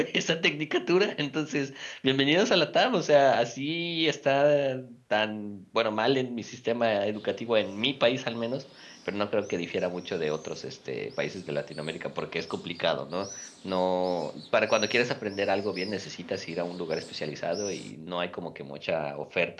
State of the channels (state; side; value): identical; both; correlation 1.00